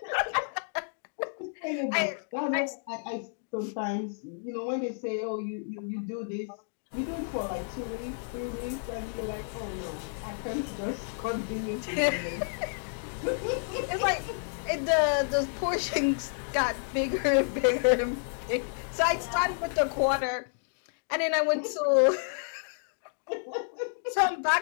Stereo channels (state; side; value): silent; right; digital silence